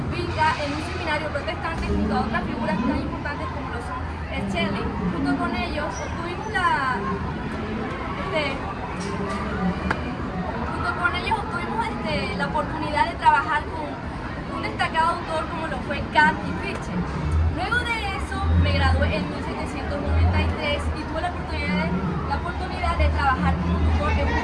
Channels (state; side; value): identical; both; correlation 1.00